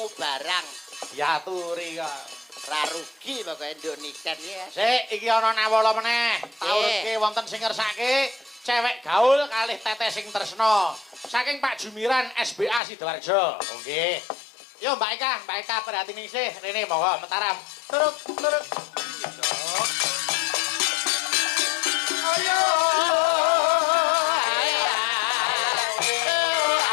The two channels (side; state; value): right; drops out; at 12.8 s